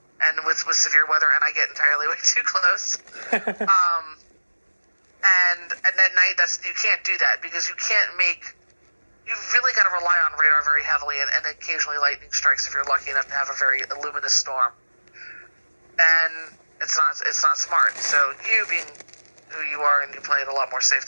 and with severe weather, and I get entirely way too close. And at night, you can't do that because you really got to rely on radar very heavily and occasionally lightning strikes if you're lucky enough to have a very luminous storm. And it's not smart. So you being who you are and you play it a lot more safe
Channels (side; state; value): both; inverted; correlation -1.00